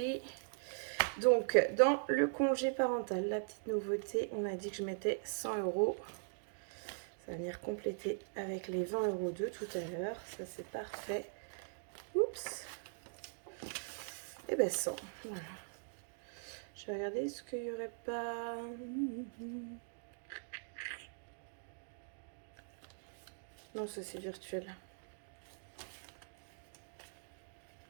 Donc, dans le congé parental, la petite nouveauté, on a dit que je mettais 100 €. Ça va venir compléter avec les 20 € de tout à l'heure. Ça, c'est parfait. Oups. Et ben 100. Voilà. Je vais regarder, est-ce qu'il n'y aurait pas... Non, ça c'est virtuel.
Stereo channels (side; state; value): left; silent; digital silence